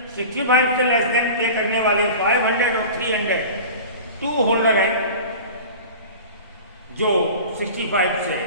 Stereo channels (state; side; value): inverted; both; correlation -0.37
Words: 65 से लेस देन पे करने वाले 500 और 300 2 होल्डर हैं जो 65 से